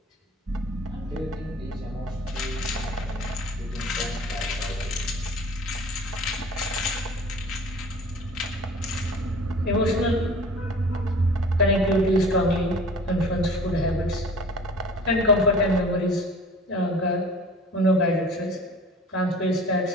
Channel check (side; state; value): both; normal; correlation 0.45